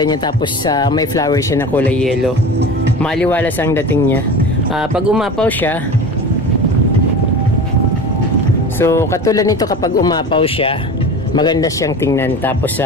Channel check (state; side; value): normal; both; correlation 0.33